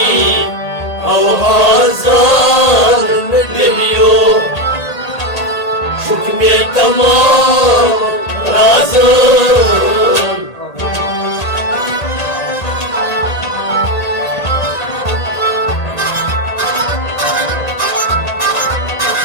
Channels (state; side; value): late; right; 1.8 ms